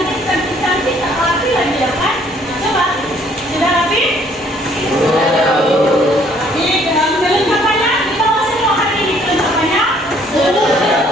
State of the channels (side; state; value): both; normal; correlation 0.62